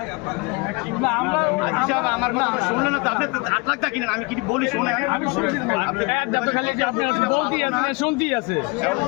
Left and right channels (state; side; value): quieter; right; 28.4 dB